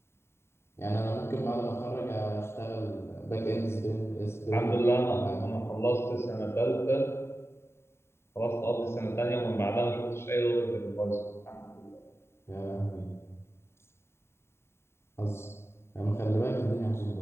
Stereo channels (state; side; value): late; right; 0.12 ms